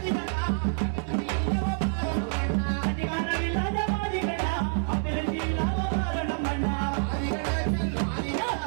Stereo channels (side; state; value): left; silent; 57 dB below the other